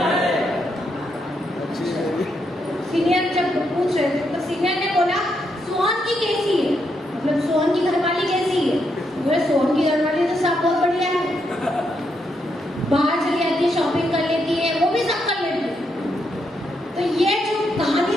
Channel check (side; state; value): both; normal; correlation 0.79